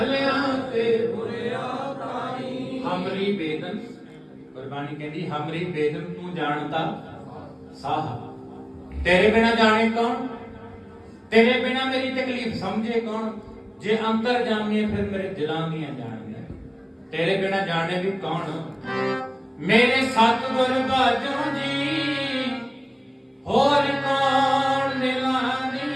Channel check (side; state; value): both; identical; correlation 1.00